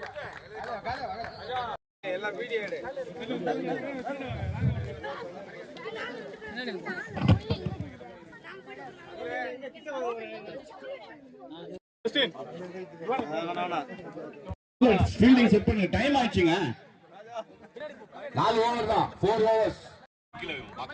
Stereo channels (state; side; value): identical; both; correlation 1.00